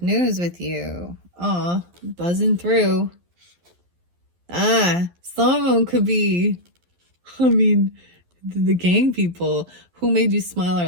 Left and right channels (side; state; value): left; late; 11 ms